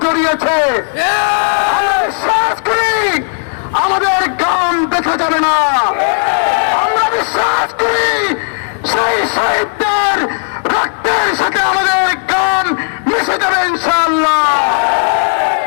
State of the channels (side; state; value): right; silent; digital silence